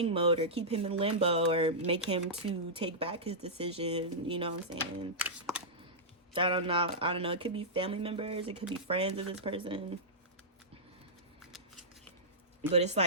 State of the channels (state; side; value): normal; both; correlation -0.13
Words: mode, or keep him in limbo, or make him to take back his decision. You know what I'm saying? I don't know. It could be family members. It could be friends of this person. But it's